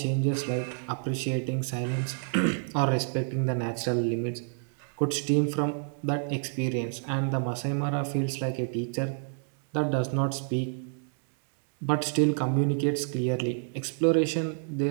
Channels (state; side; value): silent; left; 59 dB below the other